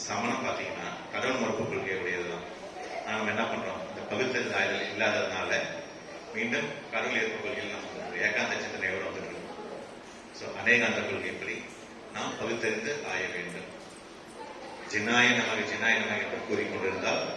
சமணம் பாத்தீங்கன்னா கடவுள் மறுப்பு கொள்கை உடையதுதான். நாம என்ன பண்றோம்? இந்த பகுத்தறிந்து ஆய்தல் இல்லாததுனால மீண்டும் கடவுள் ஏற்பு கொள்கையில் நம்ம ஏகாந்த சிந்தனையோடு வந்துட்டு இருக்கோம். அநேகாந்த கொள்கைப்படி நாம் பகுத்தறிந்து ஆய வேண்டும். ஜினாய நமக என்று கூறிக்கொண்டிருந்தால்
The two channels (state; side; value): identical; both; correlation 1.00